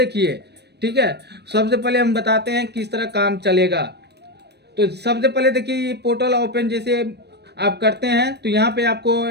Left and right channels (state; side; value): late; left; 0.48 ms